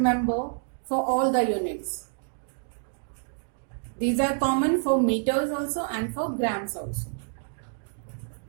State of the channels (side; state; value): left; silent; digital silence